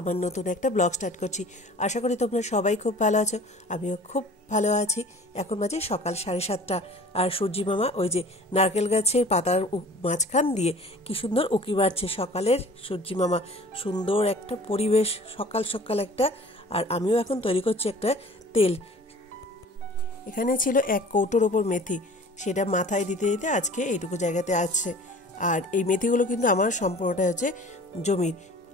নতুন একটা ব্লগ স্টার্ট করছি। আশা করি তোমরা সবাই খুব ভালো আছো, আমিও খুব ভালো আছি। এখন বাজে সকাল 7:30 আর সূর্যি মামা ওই যে নারকেল গাছের পাতার মাঝখান দিয়ে কি সুন্দর উঁকি মারছে সকালের সূর্যি মামা। সুন্দর একটা পরিবেশ, সকাল সকাল একটা। আর আমিও এখন তৈরি করছি একটা তেল। এখানে ছিল 1 কৌটোর ওপর মেথি, সেটা মাথায় দিতে দিতে আজকে এইটুকু জায়গাতে আছে। আর এই মেথিগুলো কিন্তু আমার সম্পূর্ণটা হচ্ছে জমির।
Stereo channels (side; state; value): both; normal; correlation 0.46